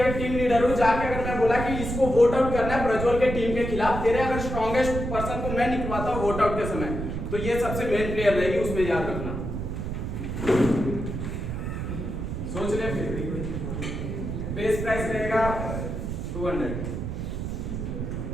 टीम लीडर हूं, जाके अगर मैं बोला कि इसको वोट आउट करना है प्रज्वल के टीम के खिलाफ, तेरे अगर स्ट्रॉन्गेस्ट पर्सन को मैं निकलवाता हूं वोट आउट के समय, तो ये सबसे मेन प्लेयर रहेगी, उसमें याद रखना। सोच ले फिर बेस प्राइस रहेगा 200।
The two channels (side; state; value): right; noise; rumble, 4 dB below the sound